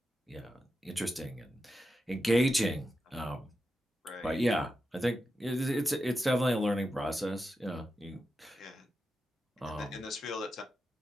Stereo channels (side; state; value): both; normal; correlation 0.89